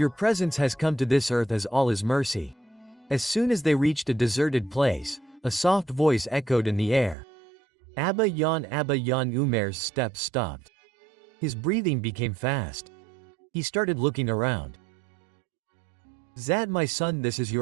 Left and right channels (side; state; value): left; drops out; at 7.2 s